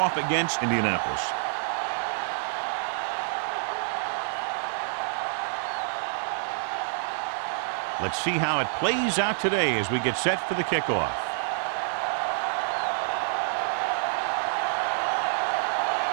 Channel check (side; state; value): left; silent; digital silence